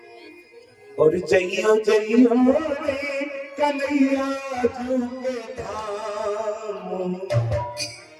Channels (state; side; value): identical; both; correlation 1.00